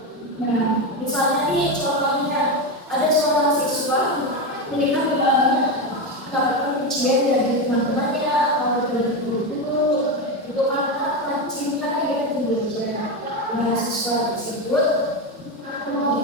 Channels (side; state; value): both; normal; correlation 0.14